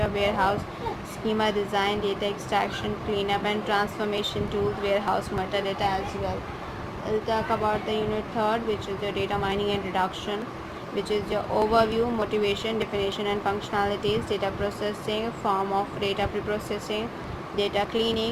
warehouse schema design, data extraction, cleanup and transformation tools, warehouse metadata as well. We'll talk about the unit third, which is your data mining and reduction, which is your overview, motivation, definition and functionalities, data processing, form of data preprocessing, data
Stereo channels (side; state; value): both; identical; correlation 1.00